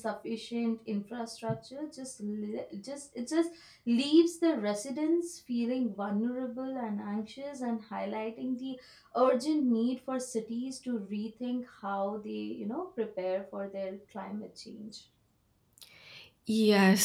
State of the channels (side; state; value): both; identical; correlation 1.00